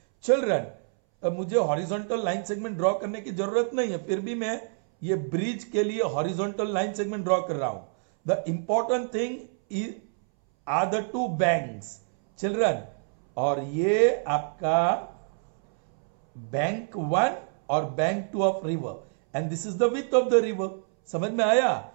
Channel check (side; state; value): left; silent; 60 dB below the other